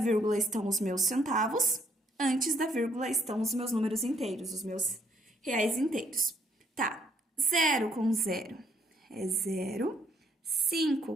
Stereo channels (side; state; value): both; normal; correlation 0.69